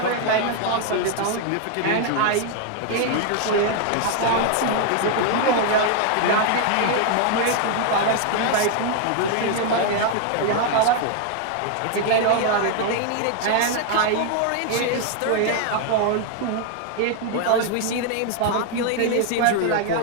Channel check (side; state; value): both; different; correlation 0.00